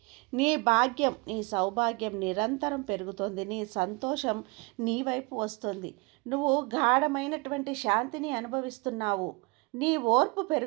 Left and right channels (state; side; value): quieter; left; 28.3 dB